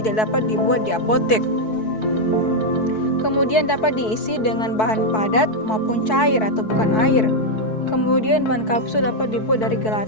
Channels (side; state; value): right; late; 4.6 ms